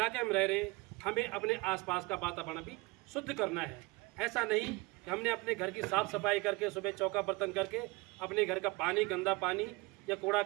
में हम रह रहे हैं, हमें अपने आसपास का वातावरण भी शुद्ध करना है। ऐसा नहीं कि हमने अपने घर की साफ़ सफाई करके सुबह चौका बर्तन करके अपने घर का पानी, गंदा पानी या कूड़ा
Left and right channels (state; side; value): quieter; left; 24.2 dB